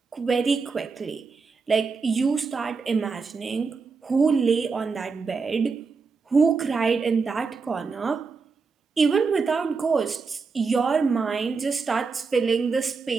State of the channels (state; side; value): quieter; left; 4.8 dB